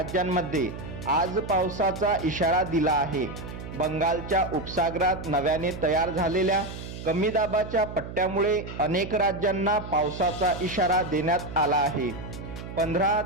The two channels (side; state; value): right; noise; hum, 10 dB below the sound